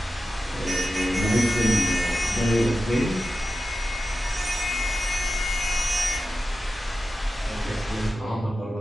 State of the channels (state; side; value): normal; both; correlation 0.93